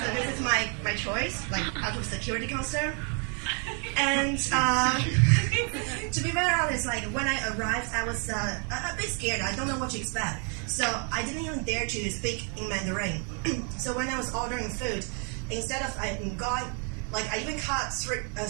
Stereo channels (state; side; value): quieter; left; 39.4 dB